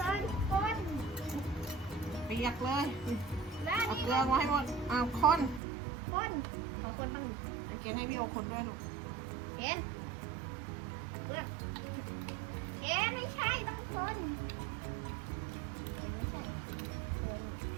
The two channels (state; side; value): drops out; left; at 5.6 s